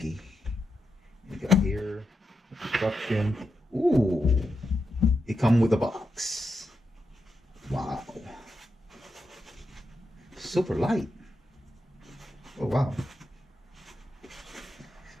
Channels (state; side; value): normal; both; correlation 0.86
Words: You got here instruction. Ooh, it comes with a box. Wow, super light. Oh wow.